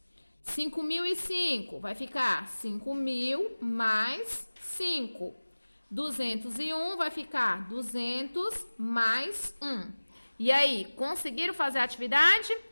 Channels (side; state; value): both; inverted; correlation -1.00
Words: 5.005 vai ficar 5.000 mais 5. 201 vai ficar 200 mais 1. E aí, conseguiram fazer a atividade?